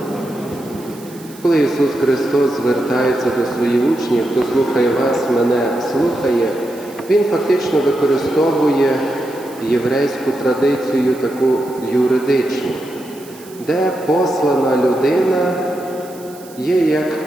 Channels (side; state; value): right; noise; hiss, 21 dB below the sound